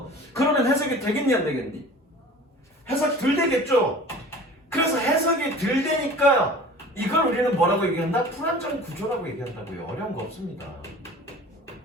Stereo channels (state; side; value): normal; both; correlation 0.43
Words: 그러면 해석이 되겠니 안 되겠니? 해석이 덜 되겠죠. 그래서 해석이 덜 되니까 이걸 우리는 뭐라고 얘기한다? 불안정 구조라고 얘기한다고요. 어려운 거 없습니다.